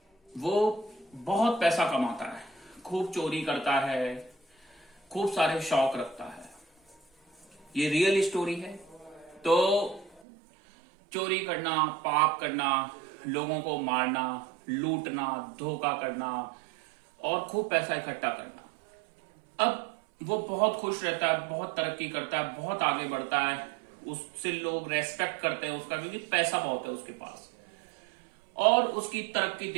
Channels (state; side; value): drops out; left; at 10.2 s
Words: वो बहुत पैसा कमाता है, खूब चोरी करता है, खूब सारे शौक रखता है। ये रियल स्टोरी है। तो चोरी करना, पाप करना, लोगों को मारना, लूटना, धोखा करना और खूब पैसा इकट्ठा करना। अब वो बहुत खुश रहता है, बहुत तरक्की करता है, बहुत आगे बढ़ता है, उससे लोग रेस्पेक्ट करते हैं उसका, क्योंकि पैसा बहुत है उसके पास और उसकी तरक्की